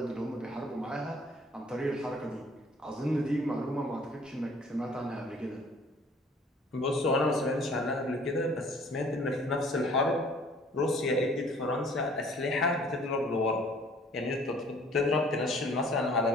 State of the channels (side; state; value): both; normal; correlation 0.54